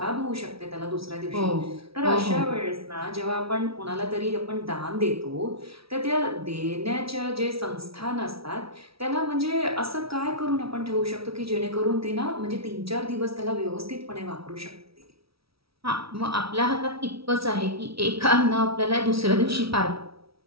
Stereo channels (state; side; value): late; left; 0.76 ms